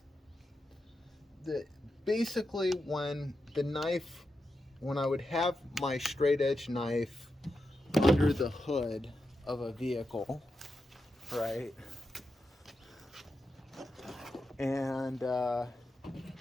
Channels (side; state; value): both; normal; correlation 0.88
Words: basically when the knife when I would have my straight edge knife under the hood of a vehicle, right? And